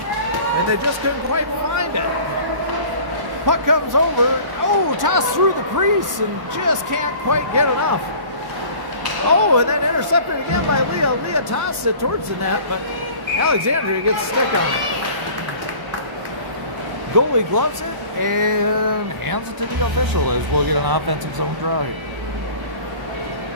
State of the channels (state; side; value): late; left; 1.1 ms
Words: they just couldn't quite find it. Puck comes over, tossed through the crease and just can't quite get enough. And then intercepted again by Leah. Leah tossed it towards the net, but Alexandria gets a stick on it. Goalie gloves it and hands it to the official as we'll get an offensive zone draw here.